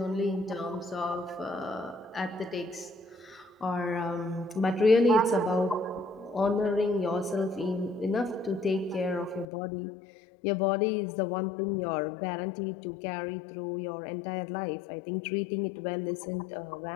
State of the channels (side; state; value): right; drops out; at 9.5 s